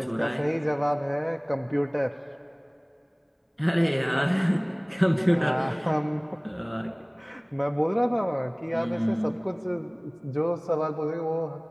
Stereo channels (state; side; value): identical; both; correlation 1.00